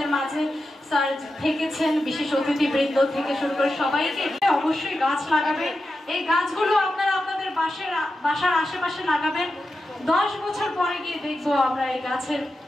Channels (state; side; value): normal; both; correlation 0.90